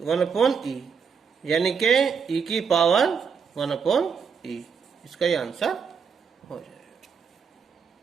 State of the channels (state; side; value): quieter; left; 6.3 dB